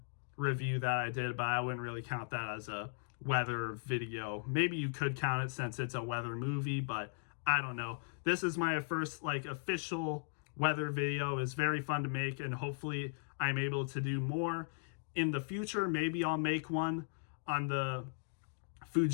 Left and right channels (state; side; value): silent; right; digital silence